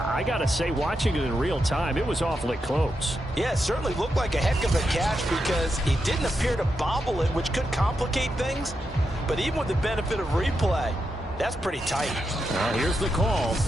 got to say, watching it in real time, it was awfully close. Yeah, it certainly looked like a heck of a catch because he didn't appear to bobble it, which could complicate things. But even with the benefit of replay, that's pretty tight. Well, here's the call.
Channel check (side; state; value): both; normal; correlation 0.86